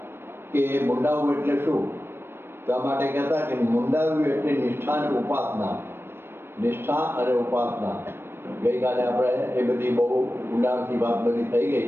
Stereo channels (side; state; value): left; late; 0.11 ms